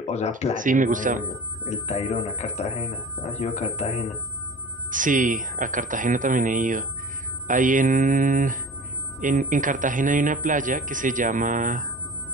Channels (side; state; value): both; normal; correlation 0.38